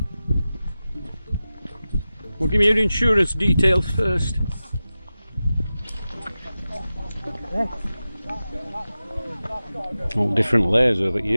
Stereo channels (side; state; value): both; inverted; correlation -0.94